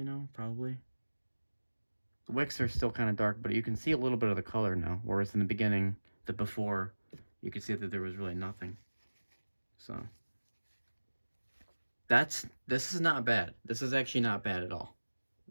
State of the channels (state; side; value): inverted; both; correlation -1.00